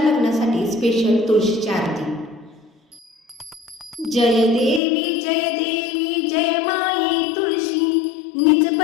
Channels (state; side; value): drops out; right; at 4.8 s